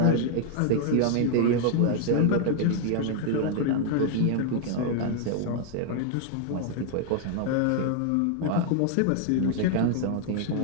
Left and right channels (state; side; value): different; both; correlation 0.00